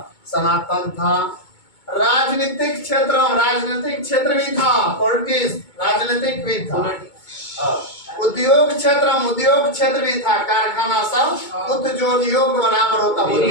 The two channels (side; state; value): right; late; 2.2 ms